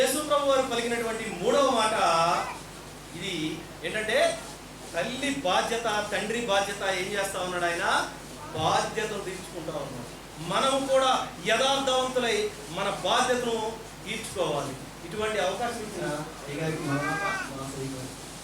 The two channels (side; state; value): both; identical; correlation 1.00